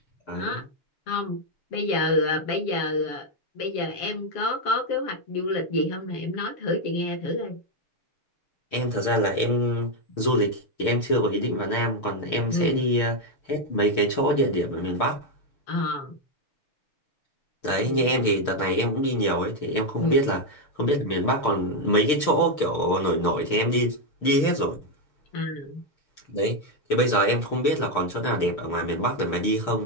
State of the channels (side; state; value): right; late; 6.6 ms